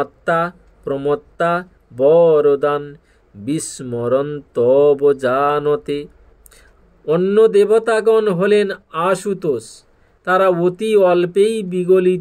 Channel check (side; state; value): both; identical; correlation 1.00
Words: প্রমত্তা বরদান বিস্মরন্তব জানতে। অন্য দেবতাগণ হলেন আশুতোষ। তারা অতি অল্পেই